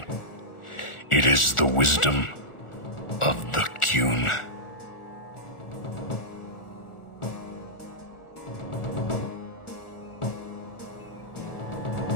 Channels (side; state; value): right; late; 1.4 ms